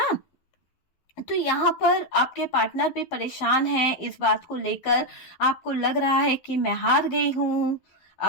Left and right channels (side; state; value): right; late; 11 ms